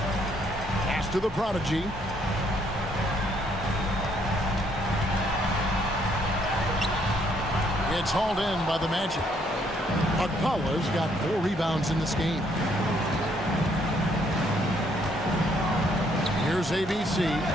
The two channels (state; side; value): normal; both; correlation 0.68